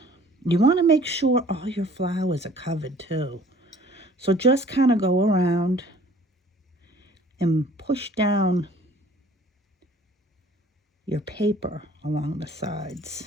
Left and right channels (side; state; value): both; normal; correlation 0.53